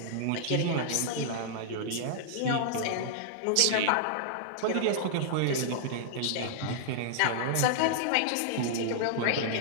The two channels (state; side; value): different; both; correlation -0.01